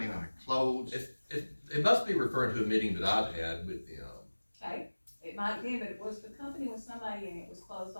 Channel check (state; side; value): inverted; both; correlation -1.00